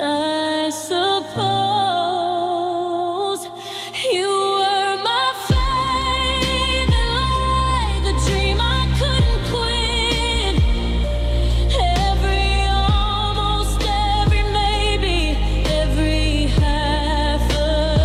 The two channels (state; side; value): identical; both; correlation 1.00